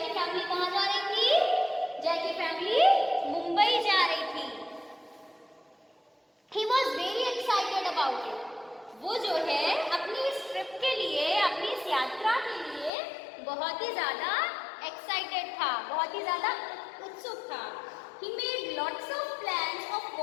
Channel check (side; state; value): right; drops out; at 12.9 s